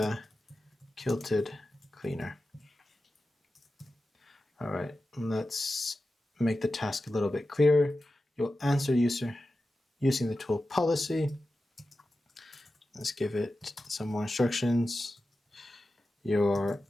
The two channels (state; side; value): normal; both; correlation 0.93